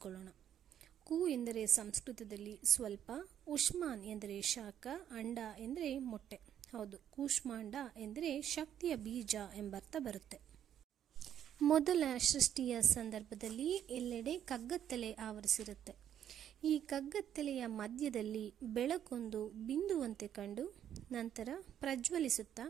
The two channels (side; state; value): left; quieter; 10.0 dB